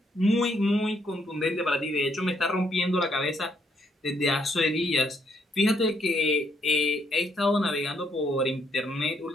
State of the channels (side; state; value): both; normal; correlation 0.73